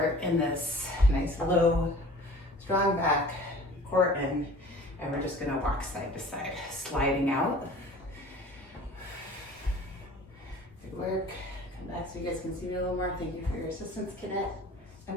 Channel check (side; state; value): both; normal; correlation 0.45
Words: in this nice low, strong back, core in, and we're just going to walk side to side, sliding out. Good work. Come back so you guys can see me a little more. Thank you for your assistance, Cadet.